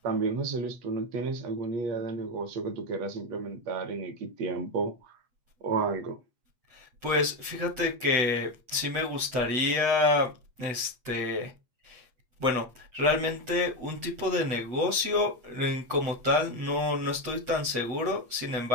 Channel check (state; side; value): late; left; 7.9 ms